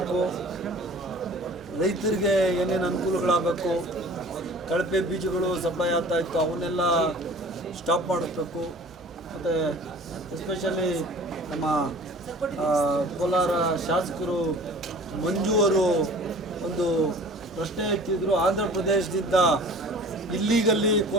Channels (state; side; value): normal; both; correlation 0.46